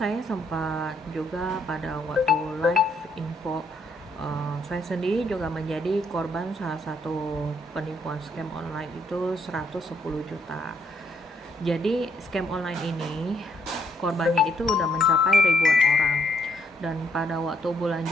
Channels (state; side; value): normal; both; correlation 0.72